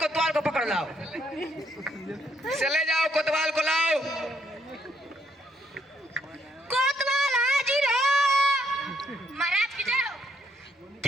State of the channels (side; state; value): both; normal; correlation 0.72